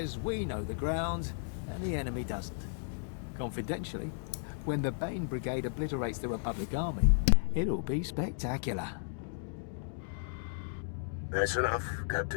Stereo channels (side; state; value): right; silent; digital silence